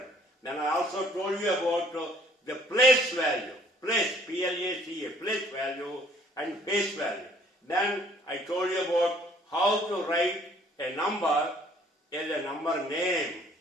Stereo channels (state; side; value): normal; both; correlation 0.59